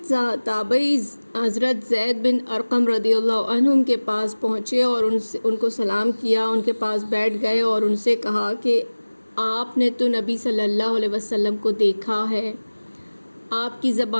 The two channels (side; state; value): both; inverted; correlation -1.00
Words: تابعی حضرت زید بن ارقم رضی اللہ عنہ کے پاس پہنچے اور ان کو سلام کیا، ان کے پاس بیٹھ گئے اور ان سے کہا کہ آپ نے تو نبی صلی اللہ علیہ وسلم کو دیکھا ہے، آپ کی